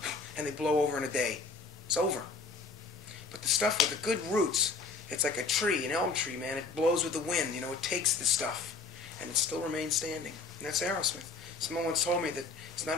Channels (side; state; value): right; quieter; 4.2 dB